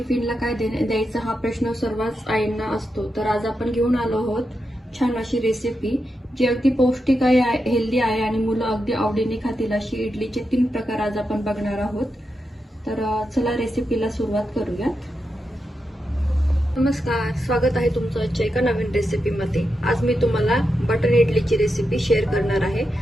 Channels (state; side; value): normal; both; correlation 0.87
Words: काय द्यायचं हा प्रश्न सर्वच आईंना असतो. तर आज आपण घेऊन आलो आहोत छान अशी रेसिपी जी अगदी पौष्टिक आहे, हेल्दी आहे आणि मुलं अगदी आवडीने खातील अशी इडलीचे 3 प्रकार आज आपण बघणार आहोत. तर चला रेसिपीला सुरुवात करूयात. नमस्कार, स्वागत आहे तुमचं आजच्या एका नवीन रेसिपीमध्ये. आज मी तुम्हाला बटर इडलीची रेसिपी शेअर करणार आहे.